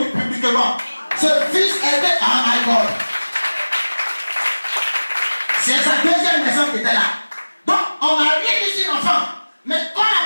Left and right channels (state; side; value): inverted; both; correlation -1.00